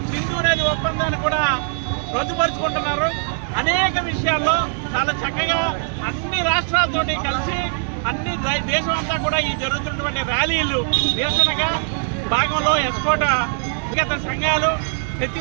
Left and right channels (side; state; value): left; silent; 61 dB below the other